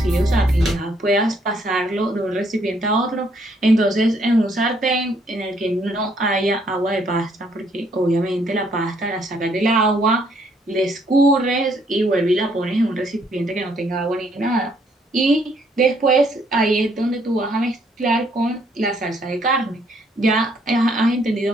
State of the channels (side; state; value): both; normal; correlation 0.68